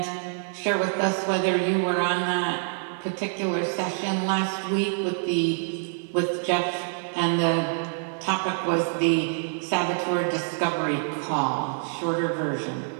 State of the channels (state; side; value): silent; left; 61 dB below the other